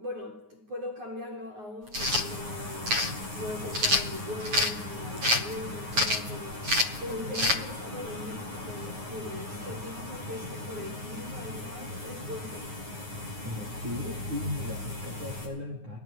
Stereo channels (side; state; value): left; late; 9.5 ms